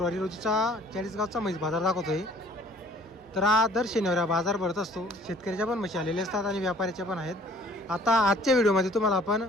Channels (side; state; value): both; normal; correlation 0.55